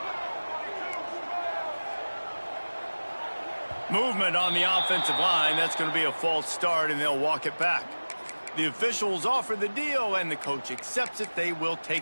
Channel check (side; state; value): both; inverted; correlation -1.00